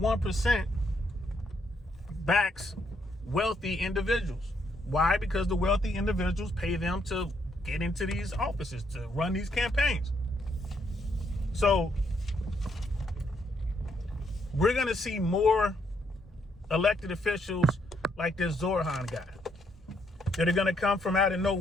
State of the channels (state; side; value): normal; both; correlation 0.74